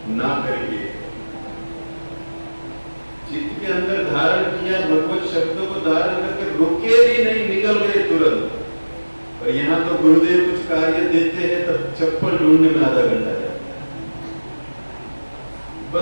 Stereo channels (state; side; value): inverted; both; correlation -1.00